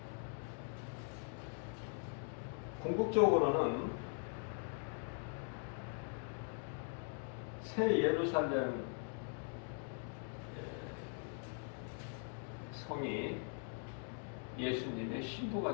궁극적으로는 새 예루살렘 성이 예수님의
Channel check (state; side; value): silent; right; 50 dB below the other